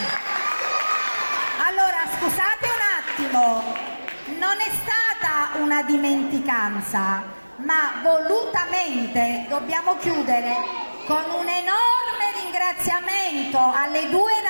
Allora, scusate un attimo. Non è stata una dimenticanza, ma volutamente dobbiamo chiudere con un enorme ringraziamento alle due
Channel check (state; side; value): inverted; both; correlation -1.00